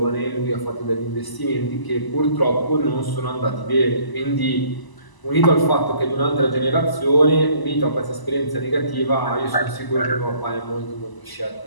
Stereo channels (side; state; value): right; late; 1.0 ms